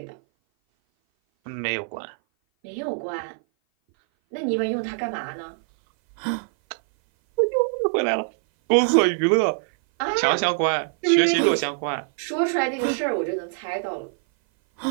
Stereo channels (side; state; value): left; silent; 57 dB below the other